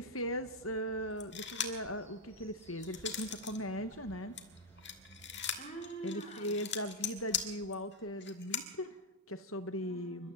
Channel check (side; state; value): both; normal; correlation 0.00